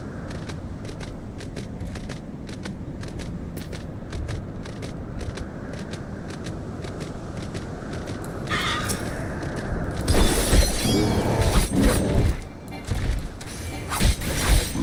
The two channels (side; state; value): both; identical; correlation 1.00